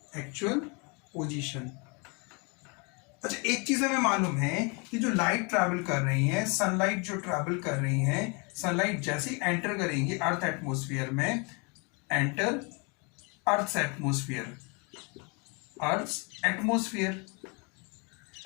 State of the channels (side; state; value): right; quieter; 32.2 dB